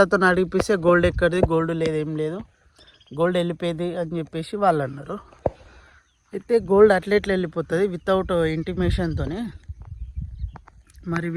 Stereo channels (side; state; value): both; identical; correlation 1.00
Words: అడిగిపిస్తే గోల్డ్ ఎక్కడిది, గోల్డ్ లేదు, ఏం లేదు, గోల్డ్ వెళ్ళిపోయింది అని చెప్పేసి వాళ్ళు అన్నారు. అయితే గోల్డ్ అట్లెట్లు వెళ్ళిపోతుంది వితౌట్ ఇంటిమేషన్తోనే. మరి